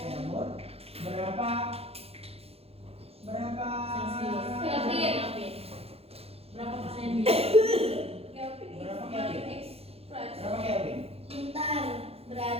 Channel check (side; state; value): left; late; 0.29 ms